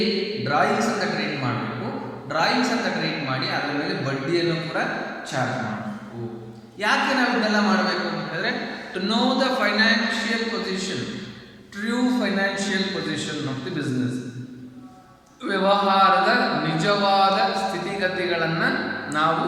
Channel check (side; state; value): both; identical; correlation 1.00